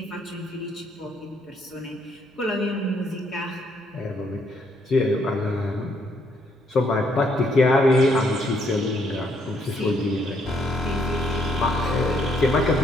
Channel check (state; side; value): normal; both; correlation 0.71